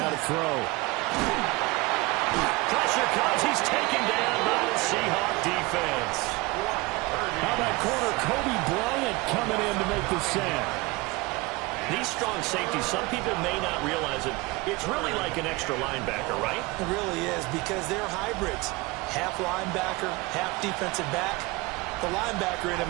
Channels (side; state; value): left; quieter; 23.4 dB